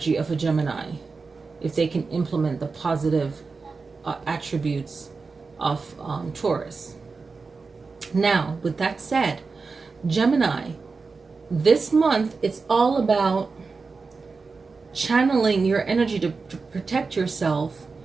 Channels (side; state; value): left; quieter; 4.4 dB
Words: of a Gemini if they can implement the positive attributes of Taurus. Now, with that said, Gemini, this month, it's all about channeling your energy to protect yourself